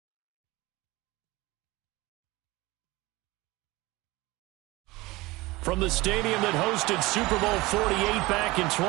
From the stadium that hosted Super Bowl 48 back in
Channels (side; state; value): left; quieter; 21.2 dB